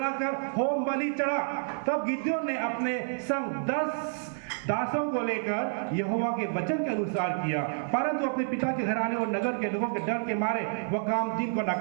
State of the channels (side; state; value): left; silent; 56 dB below the other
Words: होम बलि चढ़ा। तब गिदोन ने अपने संग 10 दासों को लेकर यहोवा के वचन के अनुसार किया, परंतु अपने पिता के घराने और नगर के लोगों के डर के मारे वह काम दिन को न